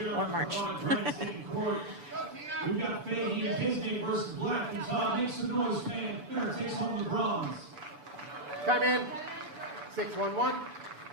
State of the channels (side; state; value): left; late; 6.9 ms